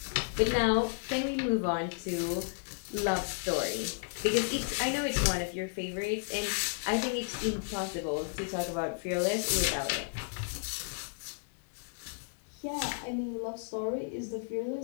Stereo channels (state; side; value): silent; right; digital silence